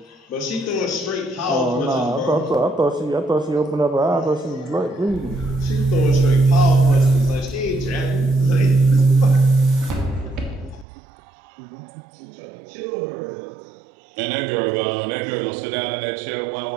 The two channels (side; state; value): left; drops out; at 10.9 s